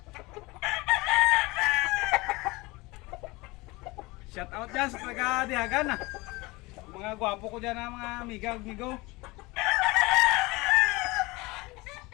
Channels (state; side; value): quieter; right; 23.1 dB